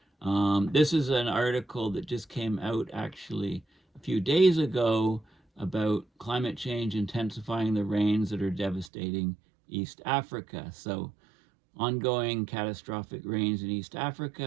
This is an article that just came out actually a few days ago about climate change intensifying the rains that are devastating East Africa. So ongoing catastrophic rains in East Africa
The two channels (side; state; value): left; drops out; at 8.9 s